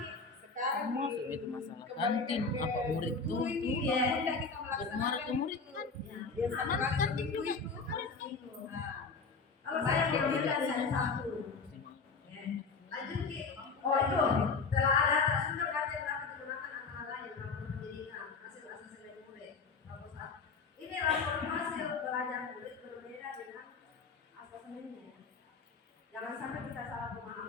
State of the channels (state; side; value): quieter; right; 4.7 dB